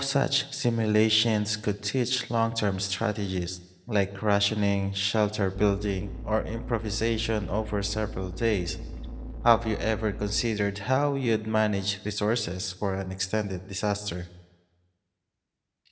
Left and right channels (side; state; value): both; identical; correlation 1.00